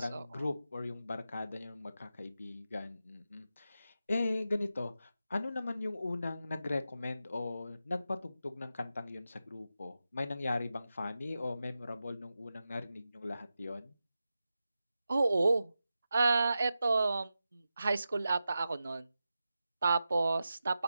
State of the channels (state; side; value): inverted; both; correlation -0.91